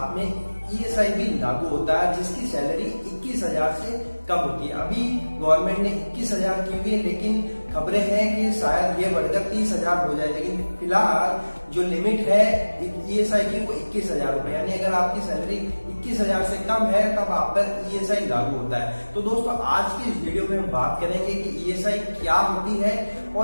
में ईएसआई भी लागू होता है, जिसकी सैलरी 21,000 से कम होती है। अभी गवर्नमेंट ने 21,000 की हुई है, लेकिन खबरें हैं कि शायद ये बढ़कर 30,000 हो जाए। लेकिन फिलहाल जो लिमिट है ईएसआई की वो 21,000 रुपए, यानी अगर आपकी सैलरी 21,000 से कम है तब आप पर ईएसआई लागू होता है। तो दोस्तों आज की इस वीडियो में हम बात करेंगे कि ईएसआई क्या होती है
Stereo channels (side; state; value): both; inverted; correlation -1.00